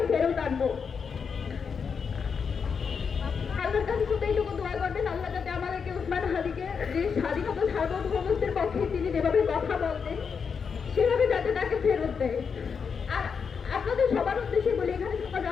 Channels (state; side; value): quieter; right; 6.1 dB